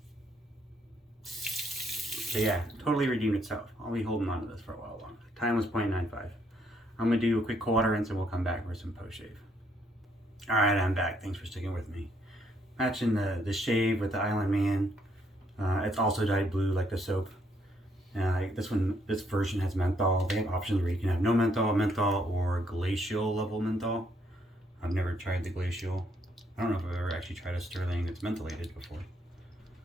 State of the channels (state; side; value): normal; both; correlation 0.71